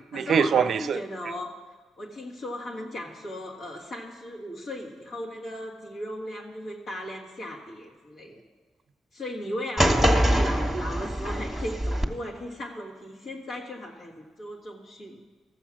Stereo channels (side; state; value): both; normal; correlation 0.87